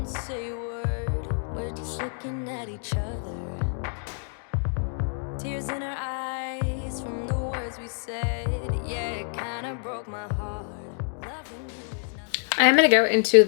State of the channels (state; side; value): silent; right; 60 dB below the other